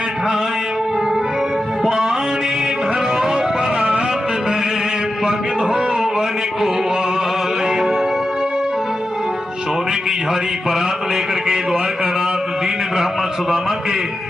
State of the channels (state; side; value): normal; both; correlation 0.90